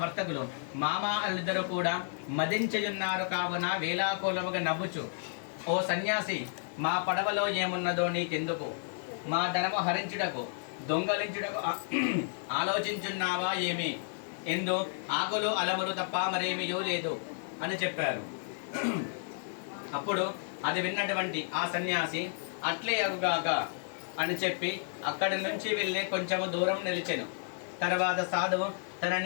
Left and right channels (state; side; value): silent; right; digital silence